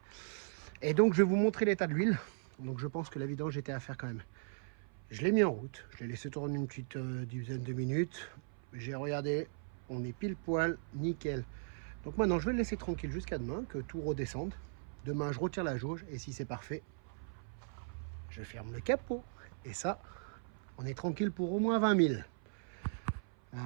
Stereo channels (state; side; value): silent; left; 53 dB below the other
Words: Et donc je vais vous montrer l'état de l'huile, donc je pense que la vidange était à faire quand même. Je l'ai mis en route, je l'ai laissé tourner une petite dizaine de minutes, j'ai regardé, on est pile poil, nickel. Donc maintenant je vais le laisser tranquille jusqu'à demain, que tout redescende. Demain je retire la jauge et si c'est parfait, je ferme le capot. Et ça, on est tranquille pour au moins 20 000.